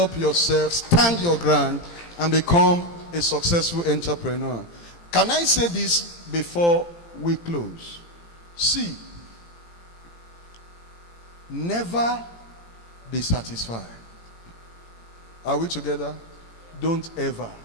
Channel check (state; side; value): late; right; 17 ms